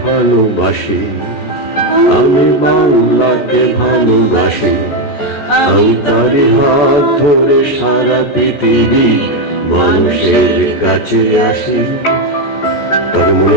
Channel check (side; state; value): right; late; 14 ms